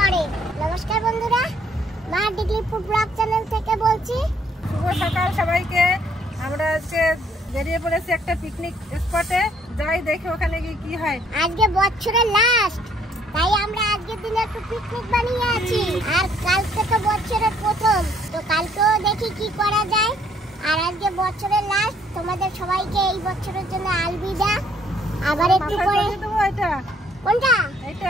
নমস্কার বন্ধুরা, মা ডিগ্রি ফুড ব্লগ চ্যানেল থেকে বলছি। শুভ সকাল সবাইকে। আমরা আজকে বেরিয়ে পড়েছি একটা পিকনিক স্পটে, যাই দেখি ওখানে গিয়ে কি হয়। আজকে বছরের লাস্ট, তাই আমরা আজকের দিনে একটু পিকনিক বানিয়ে আছি। আর কালকে তো বছরের প্রথম, তো কালকেও দেখি কি করা যায়। আর আজকে বছরের লাস্ট, তোমাদের সবাইকে এই বছরের জন্য আলবিদা। আবার একটু পরে এটা কোনটা?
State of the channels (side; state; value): both; normal; correlation 0.65